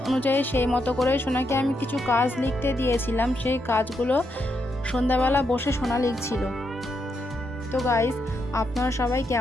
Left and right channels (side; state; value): both; normal; correlation 0.81